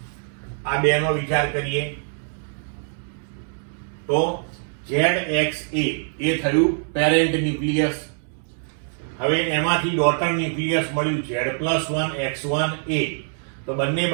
આ બેનો વિચાર કરીએ. તો ZXA એ થયું પેરેન્ટ ન્યુક્લિયસ. હવે એમાંથી ડોટર ન્યુક્લિયસ મળ્યું Z+1x1a. તો બંને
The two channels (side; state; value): left; silent; digital silence